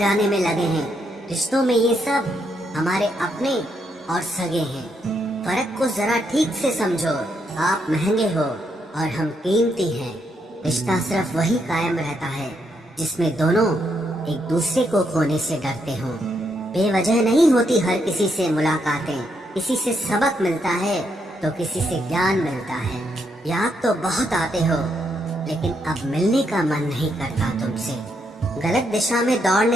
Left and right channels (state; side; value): normal; both; correlation 0.77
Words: में लगे हैं, रिश्तों में ये सब हमारे अपने और सगे हैं। फर्क को जरा ठीक से समझो। आप महंगे हो और हम कीमती हैं। रिश्ता सिर्फ वही कायम रहता है जिसमें दोनों एक दूसरे को खोने से डरते हों। बेवजह नहीं होती हर किसी से मुलाकातें। किसी से सबक मिलता है तो किसी से ज्ञान मिलता है। याद तो बहुत आते हो, लेकिन अब मिलने का मन नहीं करता तुमसे। गलत दिशा में